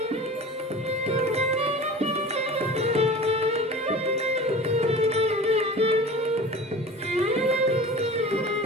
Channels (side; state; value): both; normal; correlation 0.38